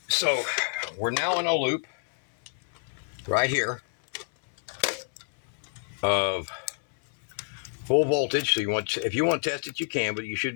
we're now in a loop right here of full voltage. So if you want to test it, you can, but you should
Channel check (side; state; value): right; silent; 59 dB below the other